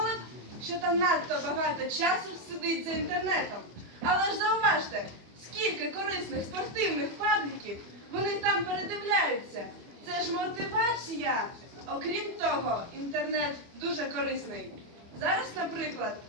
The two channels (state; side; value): late; left; 24 ms